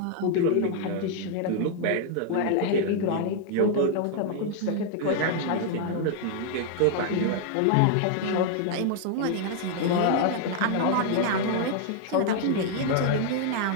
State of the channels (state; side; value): different; both; correlation 0.00